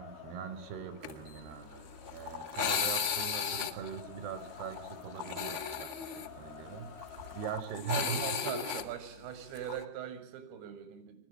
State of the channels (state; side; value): late; left; 13 ms